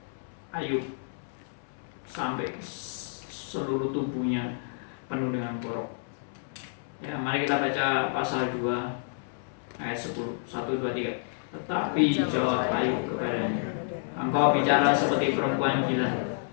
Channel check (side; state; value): right; silent; 58 dB below the other